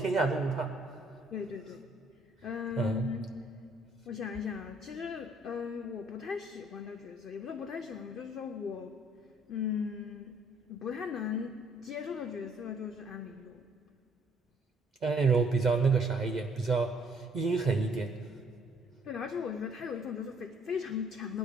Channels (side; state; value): both; normal; correlation 0.62